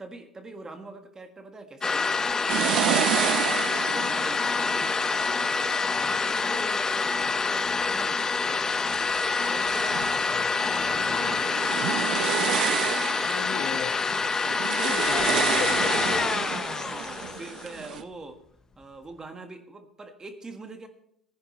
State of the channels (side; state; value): both; normal; correlation 0.70